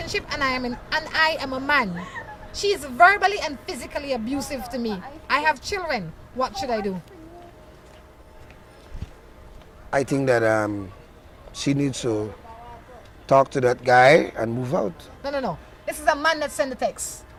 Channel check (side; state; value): both; identical; correlation 1.00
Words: and I am a man. She is verbally and physically abusive to me. I have children. What should I do? I think that she needs to talk to that guy and move out. No. This is a man that sent the text.